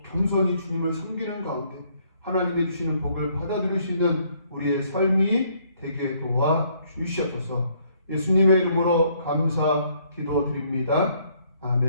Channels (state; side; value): inverted; both; correlation -0.67